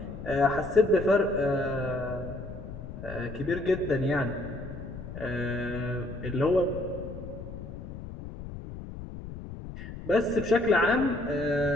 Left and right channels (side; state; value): left; noise; rumble, 11 dB below the sound